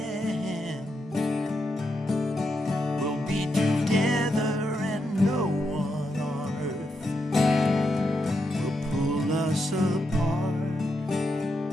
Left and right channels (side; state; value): both; normal; correlation 0.83